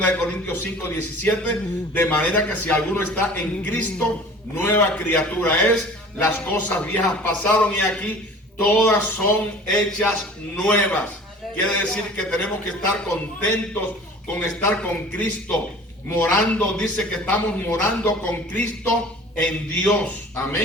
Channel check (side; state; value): both; normal; correlation 0.44